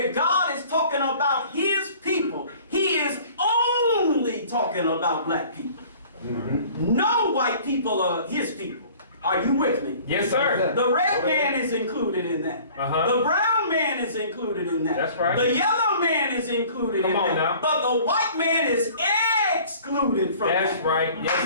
God is talking about his people, he is only talking about black people. No white people are his people. Are you with me? Yes, sir. The red man is included in that. Uh-huh. The brown man is included in that. That's right. The yellow man is included Come in on that. now. But the white man is excluded from That's that. right.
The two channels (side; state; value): both; inverted; correlation -0.49